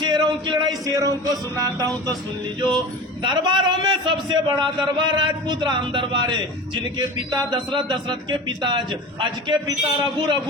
की लड़ाई शेरों को सुनाता हूँ, तो सुन लीजो। दरबारों में सबसे बड़ा दरबार राजपूत राम दरबार है, जिनके पिता दशरथ, दशरथ के पिता अज के पिता रघु,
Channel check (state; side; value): normal; both; correlation 0.33